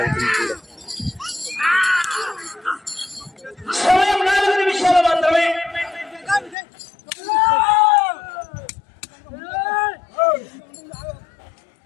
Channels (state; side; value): drops out; right; at 6.6 s